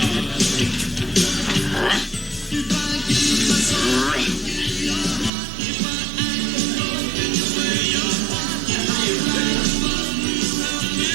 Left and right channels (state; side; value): drops out; left; at 5.3 s